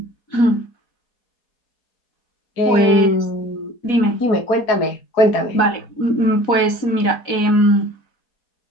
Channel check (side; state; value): right; late; 4.1 ms